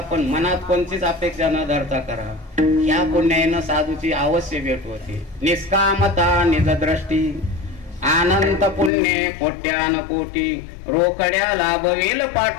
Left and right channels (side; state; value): right; drops out; at 8.9 s